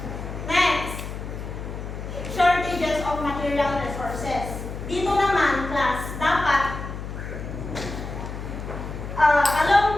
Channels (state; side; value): noise; left; hum, 8 dB below the sound